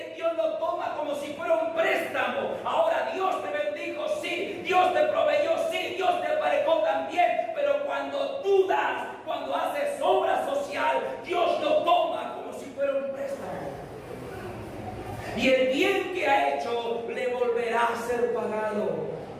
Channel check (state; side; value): identical; both; correlation 1.00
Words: Dios lo toma como si fuera un préstamo. Ahora Dios te bendijo, sí. Dios te proveyó, sí. Dios te aparejó también. Pero cuando tú das, cuando haces obra social, Dios lo toma como si fuera un préstamo. Y el bien que ha hecho le volverá a ser pagado.